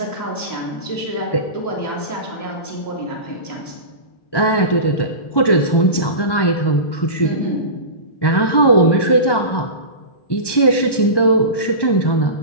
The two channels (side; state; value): right; late; 1.1 ms